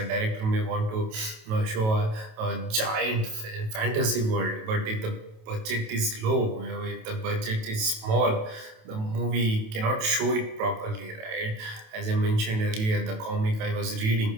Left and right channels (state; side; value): late; left; 28 ms